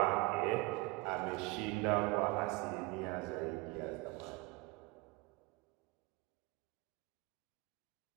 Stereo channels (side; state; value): left; quieter; 24.1 dB